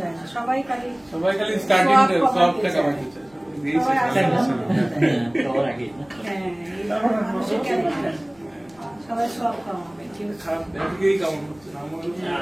সবাই খালি স্টার্টিং সব টাকা বাকি চায়। সবাই সব কামাবে, কিন্তু খারাপ দিকেই কাম করছে না।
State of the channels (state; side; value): noise; left; rumble, 30 dB below the sound